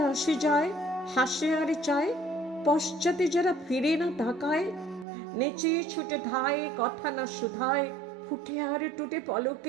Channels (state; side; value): drops out; left; at 5.1 s